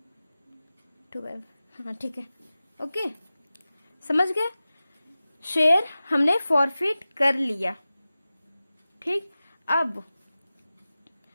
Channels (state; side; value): inverted; both; correlation -0.96